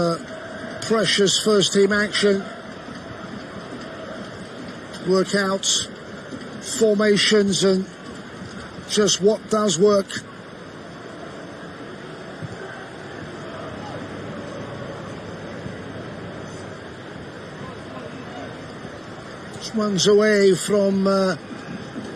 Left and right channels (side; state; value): both; identical; correlation 1.00